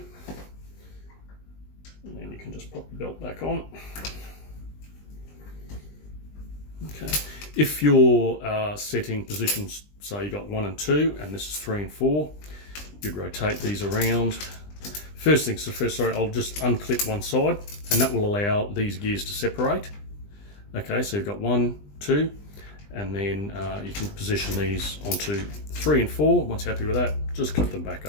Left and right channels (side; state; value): right; late; 20 ms